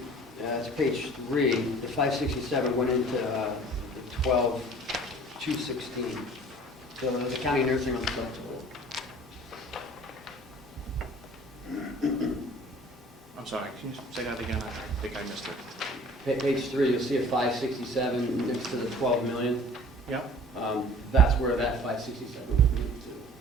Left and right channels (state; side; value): normal; both; correlation 0.48